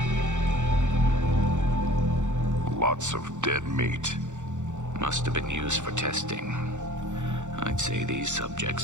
Lots of dead meat. Must have been used for testing. I'd say these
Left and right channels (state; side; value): late; left; 0.85 ms